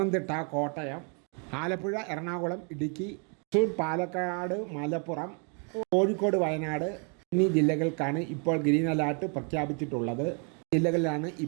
കോട്ടയം, ആലപ്പുഴ, എറണാകുളം, ഇടുക്കി, തൃശ്ശൂർ, പാലക്കാട്, മലപ്പുറം, കോഴിക്കോട്, വയനാട് എന്നീ ജില്ലകൾക്കാണ് ഇപ്പോൾ ഗ്രീൻ അലർട്ട് പ്രഖ്യാപിച്ചിട്ടുള്ളത്. ജില്ലകളിലാണ്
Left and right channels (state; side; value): quieter; left; 38.2 dB